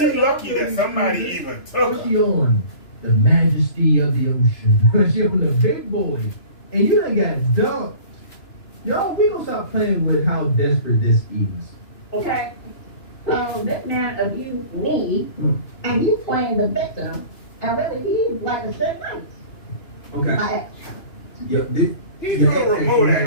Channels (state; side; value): late; right; 2.9 ms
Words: lucky that somebody even took What's her. she on? The Majesty of the Ocean. She on the big boy. And you done got dumped. Y'all, we gonna stop playing with how desperate this is. Okay? So this man abused me, and you playing the victim, And really, he's like a shit nice. Okay. Like, Yeah, this. He your threw a access remote you at have